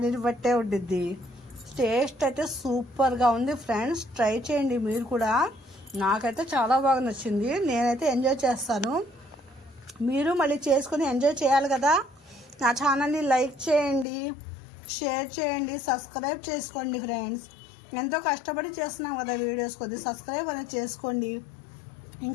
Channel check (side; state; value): right; drops out; at 14.1 s